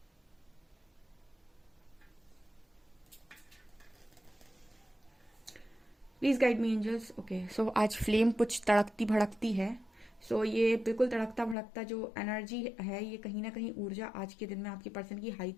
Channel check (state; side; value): drops out; right; at 11.6 s